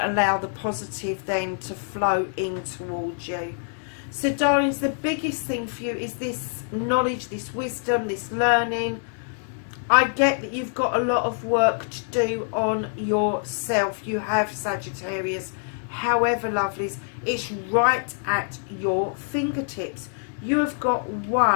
the positive then to flow in towards you. So, darlings, the biggest thing for you is this knowledge, this wisdom, this learning. I get that you've got a lot of work to do on yourself. You have, Sagittarius. However, lovelies, it's right at your fingertips. You have got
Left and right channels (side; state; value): right; silent; 62 dB below the other